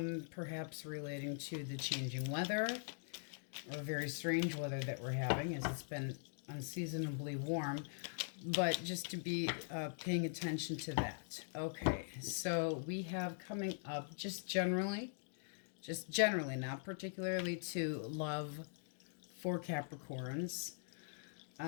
relating to the changing weather, or very strange weather that we're having, as it's been unseasonably warm, but just to be paying attention to that. Okay, so we have coming up just generally, not particularly to love for Capricorns,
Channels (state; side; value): silent; right; digital silence